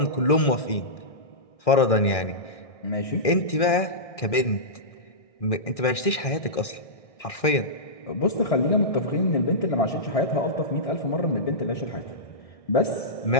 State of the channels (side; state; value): right; late; 1.6 ms